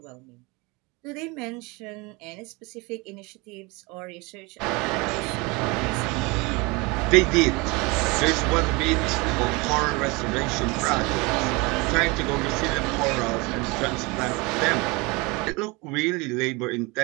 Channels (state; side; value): quieter; left; 26.0 dB